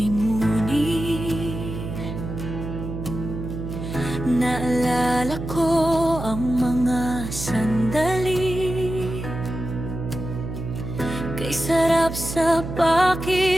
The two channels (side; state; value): right; noise; hum, 7 dB below the sound